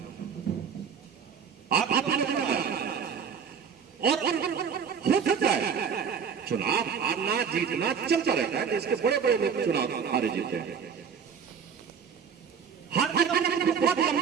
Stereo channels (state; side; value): quieter; left; 6.9 dB